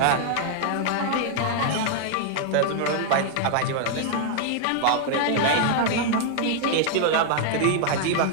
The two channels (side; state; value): both; different; correlation 0.00